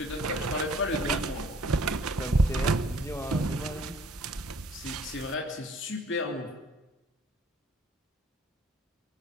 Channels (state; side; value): normal; both; correlation 0.57